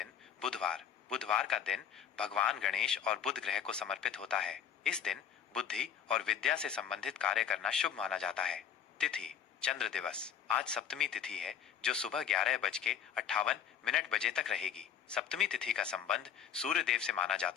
बुधवार। बुधवार का दिन भगवान गणेश और बुध ग्रह को समर्पित होता है। इस दिन बुद्धि और विद्या से संबंधित कार्य करना शुभ माना जाता है। तिथि चंद्र दिवस। आज सप्तमी तिथि है जो सुबह 11:58 बजे तक रहेगी। सप्तमी तिथि का संबंध सूर्य देव से माना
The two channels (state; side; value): quieter; right; 8.5 dB